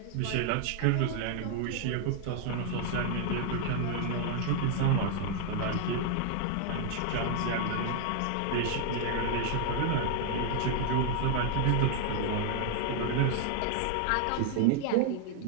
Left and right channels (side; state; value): both; different; correlation 0.00